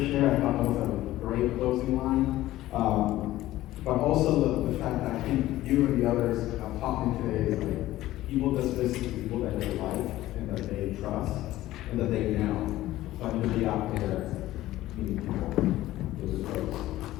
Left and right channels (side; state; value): right; quieter; 15.5 dB